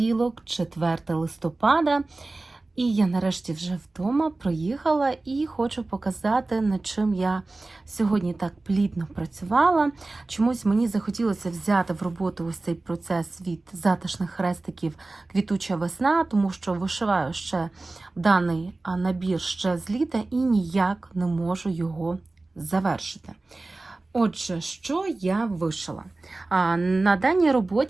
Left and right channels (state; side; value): quieter; left; 3.2 dB